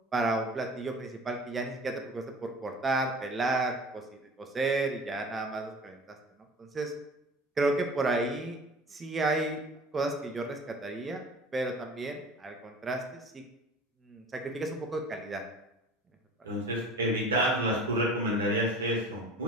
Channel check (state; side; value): normal; both; correlation 0.42